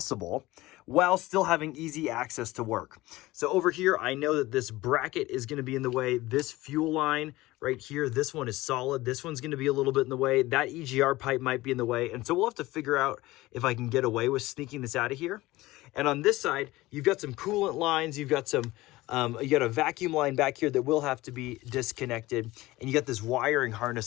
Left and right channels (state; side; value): quieter; right; 18.8 dB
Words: while still having easy access to work. So over here, I know that this bracket is going to be in the way. This fuel line right here, this one is solid. This one's going to be a little bit in the way. That EGR pipe might be in the way. And so we'll have to figure out if I can get away with sneaking this out of here. And on this side, you've got some coolant lines. You've got some you got a vacuum line back here that will have to be disconnected, and you got this wiring